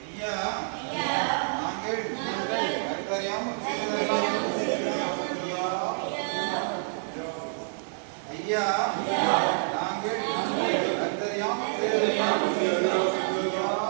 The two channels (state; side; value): silent; left; 59 dB below the other